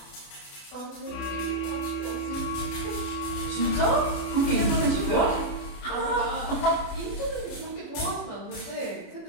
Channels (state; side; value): late; right; 31 ms